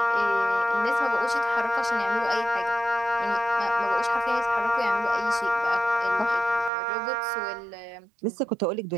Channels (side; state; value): left; drops out; at 6.7 s